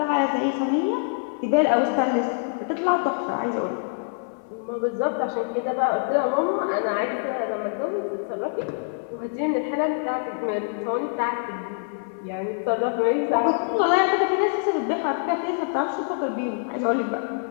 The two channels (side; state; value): right; silent; 62 dB below the other